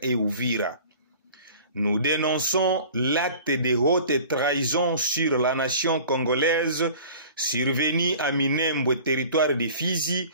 et Uvira, nous dénonçons l'acte de haute trahison sur la nation congolaise survenu à Minembwe, territoire de Fizi,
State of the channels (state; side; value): inverted; both; correlation -0.45